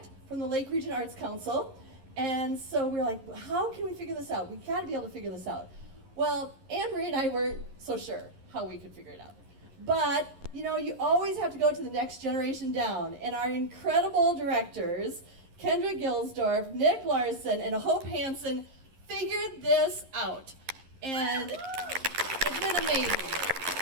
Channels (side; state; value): left; late; 11 ms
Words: from the Lake Region Arts Council. And so we were like, how can we figure this out? We've got to be able to figure this out. Well, Anne-Marie and I weren't so sure how we could figure it out. But, you always have to go to the next generation down. And our incredible directors, Kendra Gilsdorf, Nick Larson, and Hope Hansen, figured this out. And it's been amazing.